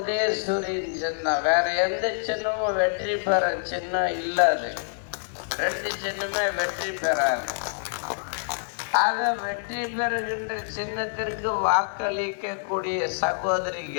சின்னம். வேற எந்த சின்னமும் வெற்றி பெற சின்னம் இல்லாது. 2 சின்னமே வெற்றி பெறாது. ஆக வெற்றி பெறுகின்ற சின்னத்திற்கு வாக்களிக்கக்கூடிய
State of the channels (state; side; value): silent; right; digital silence